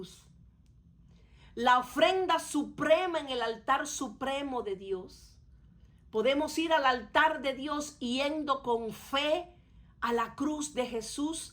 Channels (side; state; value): both; identical; correlation 1.00